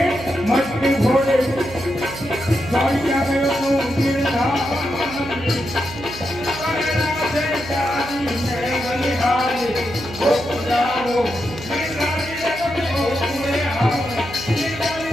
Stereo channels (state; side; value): noise; right; hum, 14 dB below the sound